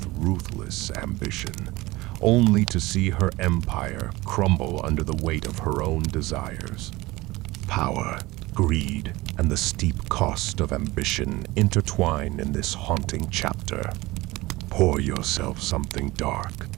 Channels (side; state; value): left; quieter; 20.3 dB